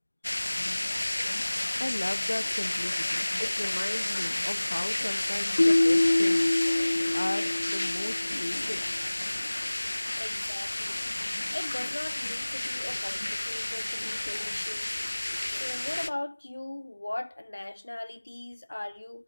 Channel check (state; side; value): inverted; both; correlation -1.00